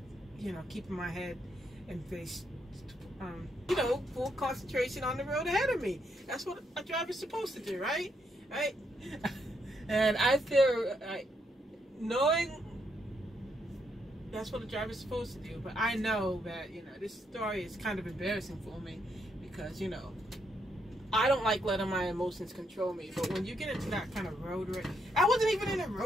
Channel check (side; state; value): both; normal; correlation 0.77